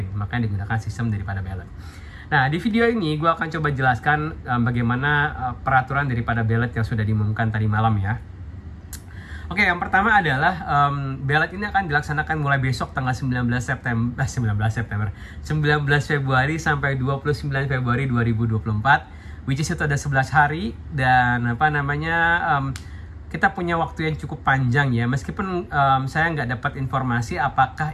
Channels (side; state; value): both; identical; correlation 1.00